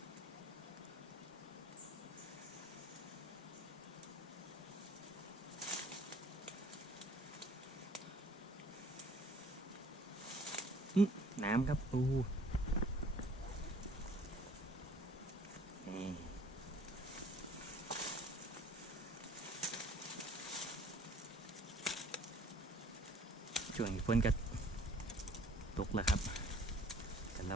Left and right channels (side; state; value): both; normal; correlation 0.55